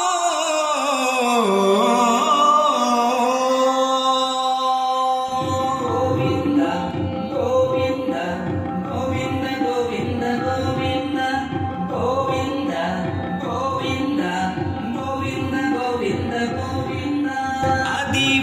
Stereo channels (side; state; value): both; identical; correlation 1.00